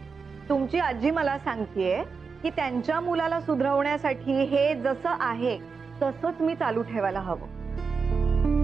तुमची आजी मला सांगतेय की त्यांच्या मुलाला सुधरवण्यासाठी हे जसं आहे तसंच मी चालू ठेवायला हवं।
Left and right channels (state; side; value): quieter; left; 5.1 dB